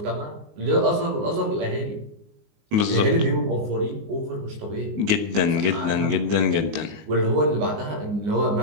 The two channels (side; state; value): left; late; 19 ms